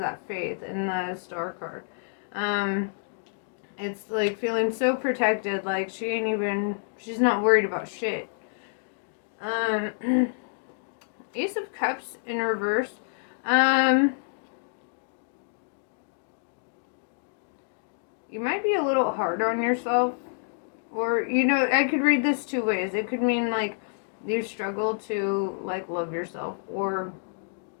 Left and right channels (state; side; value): silent; right; digital silence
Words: faith in the Star card. It's like feeling so protected, like she's not worried about shit. Ace of Cups in reverse. You might be a little hard on yourself, or, you know, I could read this two ways. It could mean like you struggle to like love yourself, or